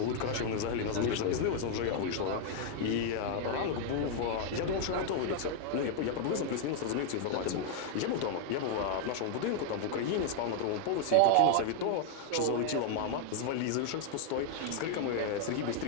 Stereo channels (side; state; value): both; different; correlation 0.00